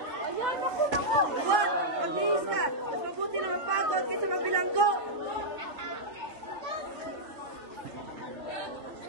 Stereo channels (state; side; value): late; left; 3.3 ms